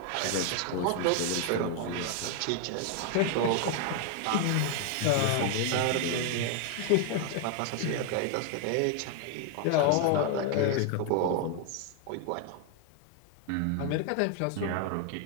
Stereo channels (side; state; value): both; different; correlation 0.00